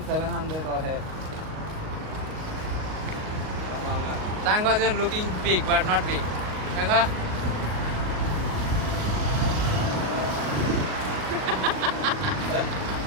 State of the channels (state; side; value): late; left; 38 ms